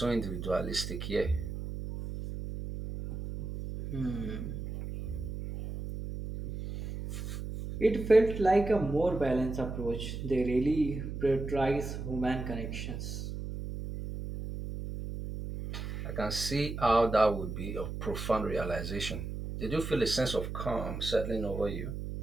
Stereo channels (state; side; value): noise; right; hum, 6 dB below the sound